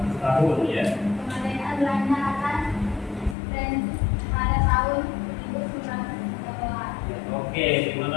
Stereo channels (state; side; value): drops out; right; at 3.4 s